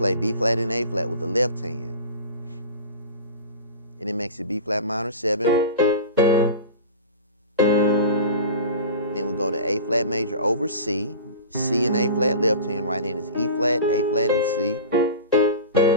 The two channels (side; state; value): both; inverted; correlation -0.34